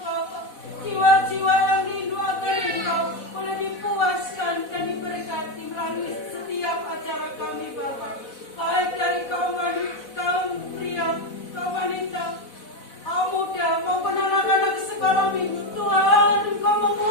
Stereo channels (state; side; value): late; right; 4.0 ms